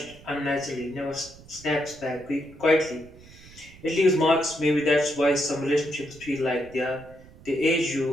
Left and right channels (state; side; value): noise; right; rumble, 21 dB below the sound